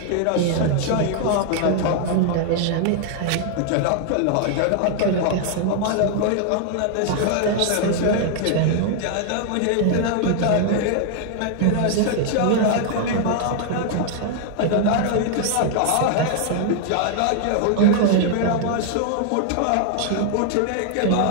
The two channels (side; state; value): both; different; correlation 0.00